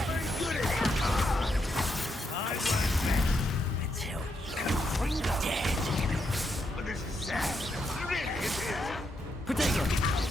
very good at it! I won't bet until you're dead. But this is sad. Really, it is. Protego!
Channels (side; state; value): both; normal; correlation 0.80